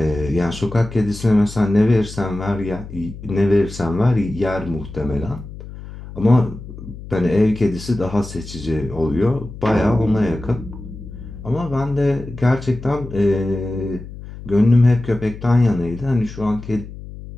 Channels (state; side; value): noise; left; hum, 13 dB below the sound